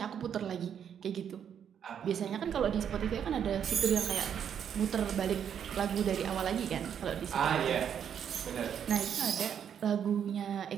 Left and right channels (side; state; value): left; quieter; 8.5 dB